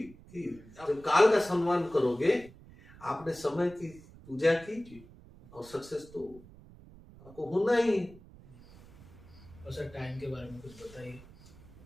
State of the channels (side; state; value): right; noise; rumble, 21 dB below the sound